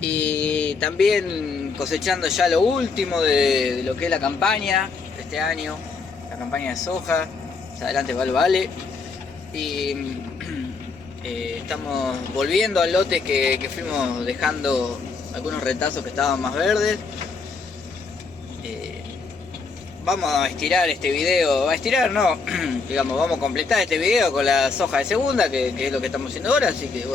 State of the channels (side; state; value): right; quieter; 4.5 dB